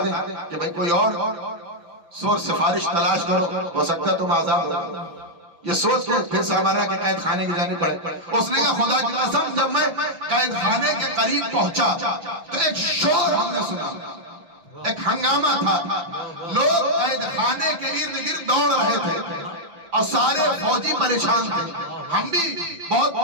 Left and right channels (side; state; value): left; late; 5.9 ms